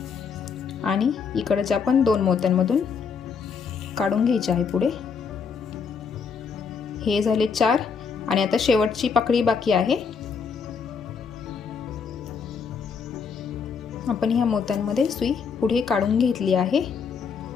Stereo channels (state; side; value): quieter; right; 5.9 dB